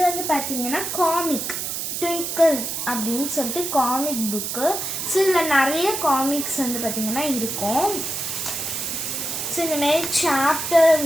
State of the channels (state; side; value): noise; right; hiss, 3 dB below the sound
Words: பார்த்திங்கன்னா காமிக் ட்விங்கிள்ஸ் அப்படின்னு சொல்லிட்டு காமிக் புக்கு. ஸோ இதில் நிறைய காமிக்ஸ் பார்த்திங்கன்னா இருக்கும். ஸோ இந்தமாரி சாப்டர்